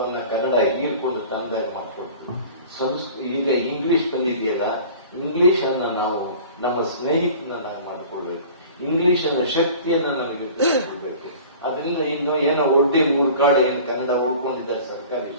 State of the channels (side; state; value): both; inverted; correlation -0.43